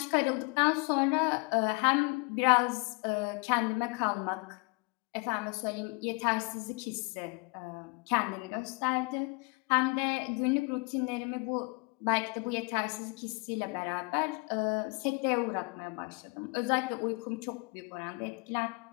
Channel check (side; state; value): right; quieter; 30.5 dB